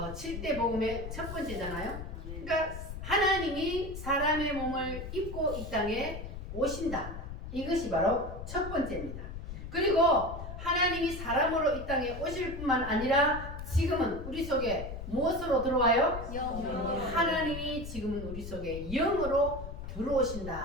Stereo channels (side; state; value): left; noise; rumble, 9 dB below the sound